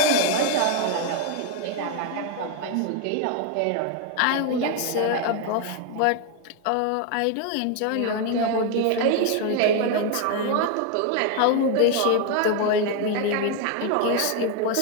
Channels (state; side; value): different; both; correlation 0.01